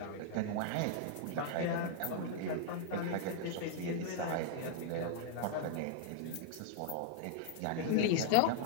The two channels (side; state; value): both; different; correlation 0.00